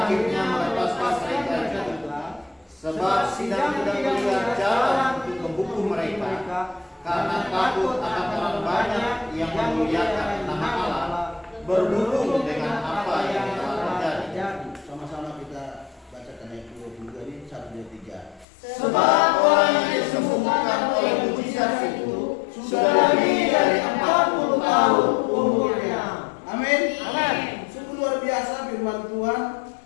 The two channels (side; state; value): right; drops out; at 18.4 s